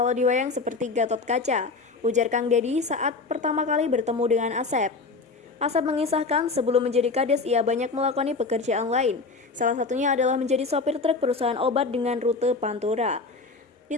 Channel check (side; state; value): right; quieter; 4.0 dB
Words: diwayang seperti Gatot Kaca, ujar Kang Deddy saat pertama kali bertemu dengan Asep. Asep mengisahkan sebelum menjadi Kades ia banyak melakoni pekerjaan lain. Salah satunya adalah menjadi sopir truk perusahaan obat dengan rute Pantura. Di